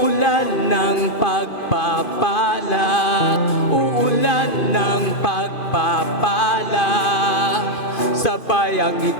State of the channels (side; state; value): right; late; 2.5 ms